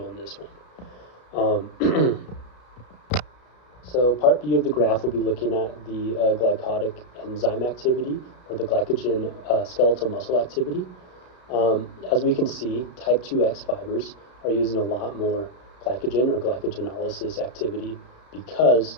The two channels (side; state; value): right; late; 33 ms